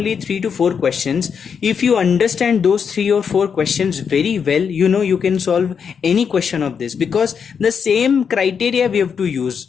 3 to 4 questions. If you understand those 3 or 4 questions very well, you know you can solve any question of this, because the same criteria we have to use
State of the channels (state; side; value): quieter; right; 6.7 dB